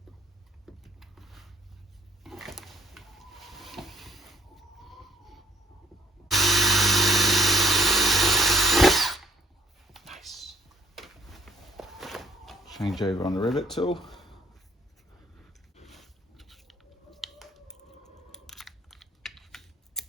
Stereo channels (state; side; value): normal; both; correlation 0.58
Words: Nice. Change over on the rivet tool.